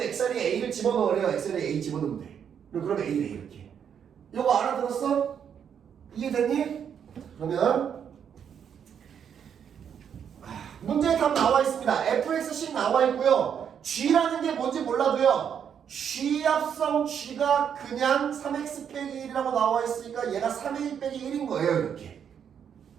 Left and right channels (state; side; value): quieter; left; 8.1 dB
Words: X 자리에 A를 집어넣으래요. X 자리에 A 집어넣으면 돼. 그러면 A래 이렇게. 이거 알아들었어? 이해됐니? 그러면 문제의 답 나와 있습니다. fxc 나와 있고요. g라는 게 뭔지 몰라도요. g합성 g가 그냥 3x 빼기 1이라고 나와 있으니까 얘가 3a 빼기 1인 거예요. 이렇게.